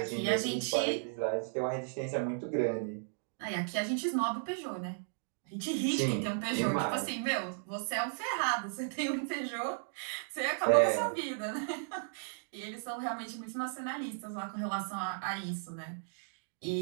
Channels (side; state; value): left; silent; digital silence